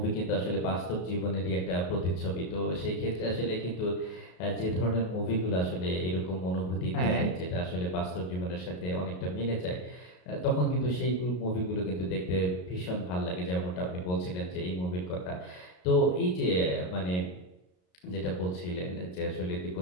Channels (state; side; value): late; right; 33 ms